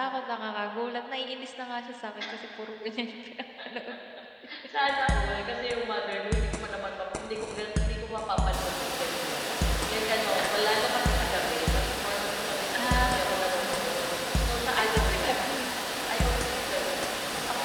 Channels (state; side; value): identical; both; correlation 1.00